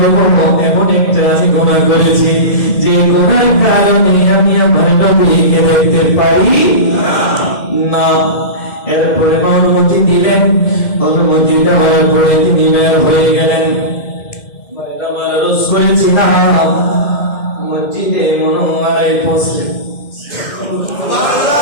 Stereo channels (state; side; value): late; right; 2.1 ms